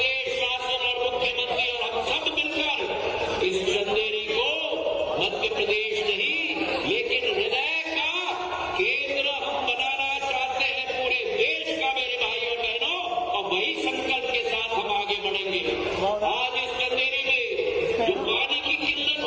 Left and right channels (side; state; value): both; identical; correlation 1.00